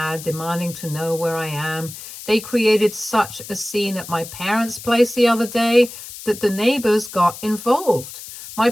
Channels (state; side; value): noise; left; hiss, 13 dB below the sound